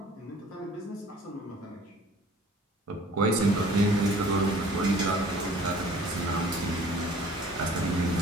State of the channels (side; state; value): both; normal; correlation 0.51